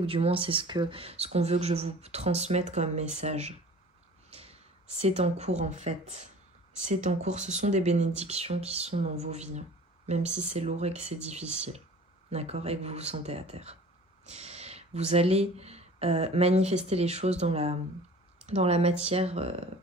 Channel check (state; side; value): normal; both; correlation 0.44